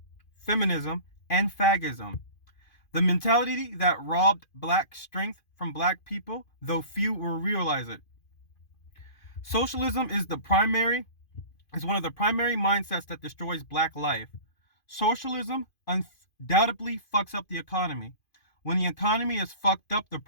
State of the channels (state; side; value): late; right; 2.5 ms